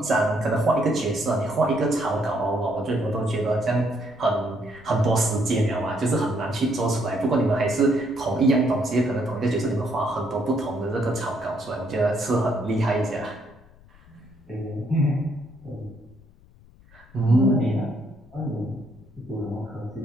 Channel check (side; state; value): left; noise; rumble, 25 dB below the sound